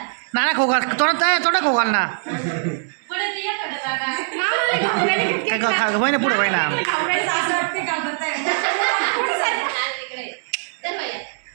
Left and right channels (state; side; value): silent; left; 65 dB below the other